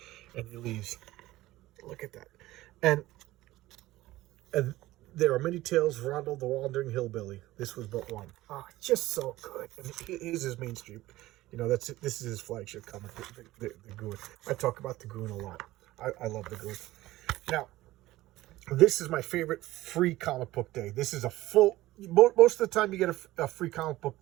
And he leaves. Look at that. And there are many tales of Rondo the Wandering Hillbilly. This was but one. Just so good. And here's his mainstream. This is his flagship comic, the Goon. I talk about the Goon a lot. I love the Goon. Now, this is my favorite free comic book day. This is a most of the time you get a free comic book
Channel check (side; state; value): left; quieter; 17.0 dB